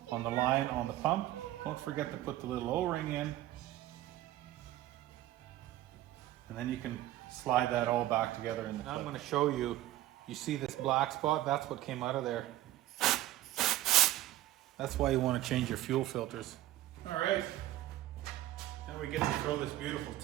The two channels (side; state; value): left; quieter; 14.6 dB